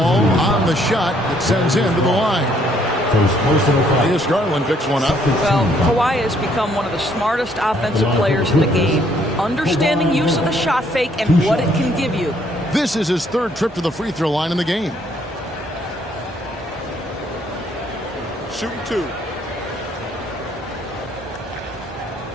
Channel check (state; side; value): normal; both; correlation 0.66